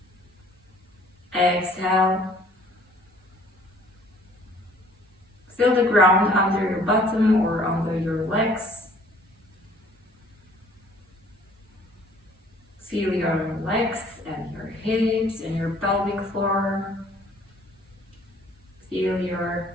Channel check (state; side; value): normal; both; correlation 0.56